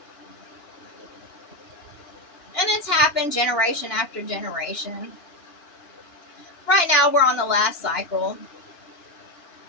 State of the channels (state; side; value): late; right; 2.9 ms